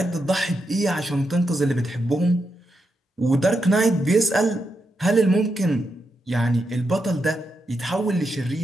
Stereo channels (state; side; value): normal; both; correlation 0.84